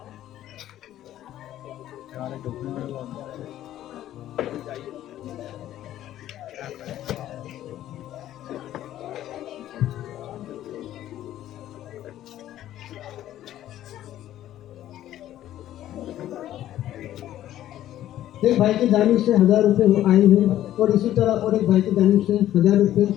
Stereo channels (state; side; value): quieter; right; 12.8 dB